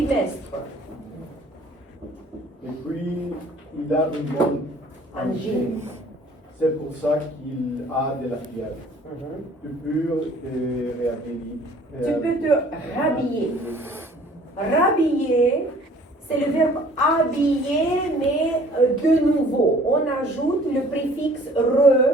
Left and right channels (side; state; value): both; normal; correlation 0.53